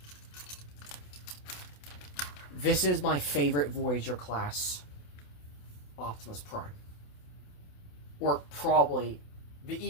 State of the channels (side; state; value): right; late; 28 ms